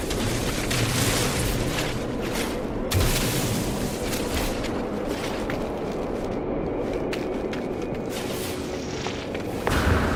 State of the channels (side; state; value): both; identical; correlation 1.00